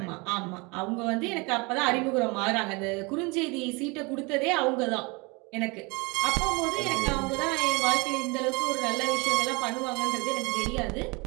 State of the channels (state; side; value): quieter; left; 27.9 dB